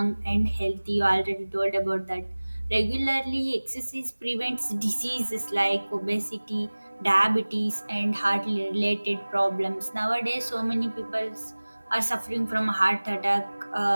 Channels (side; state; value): both; inverted; correlation -1.00